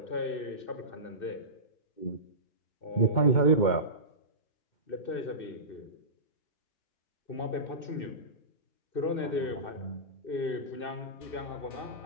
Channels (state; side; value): late; right; 2.6 ms